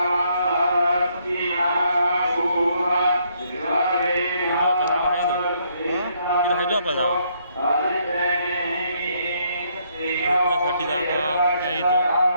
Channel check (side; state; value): both; inverted; correlation -0.71